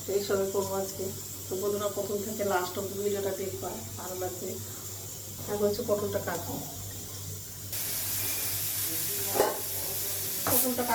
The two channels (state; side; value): identical; both; correlation 1.00